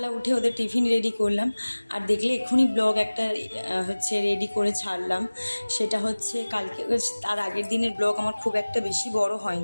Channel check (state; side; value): inverted; both; correlation -1.00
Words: উঠে ওদের টিফিন রেডি করলাম, আর দেখলে এক্ষুনি ব্লগ একটা রেডি করে ছাড়লাম। সেটা হচ্ছে কালকে, তার আগের দিনের ব্লগ আমার খুব একটা বেশি বড়